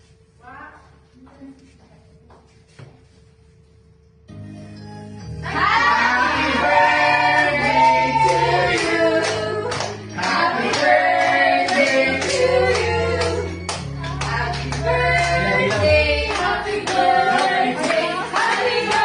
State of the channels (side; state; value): both; identical; correlation 1.00